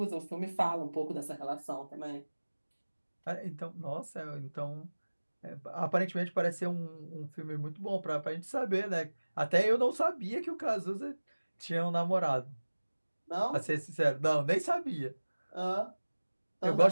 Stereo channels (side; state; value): both; inverted; correlation -1.00